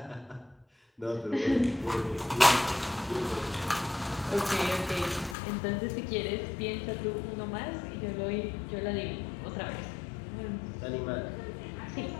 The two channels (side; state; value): right; drops out; at 5.4 s